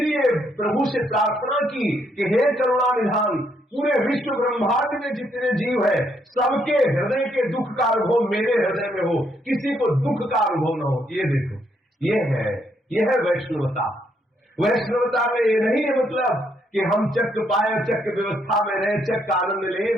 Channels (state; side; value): normal; both; correlation 0.73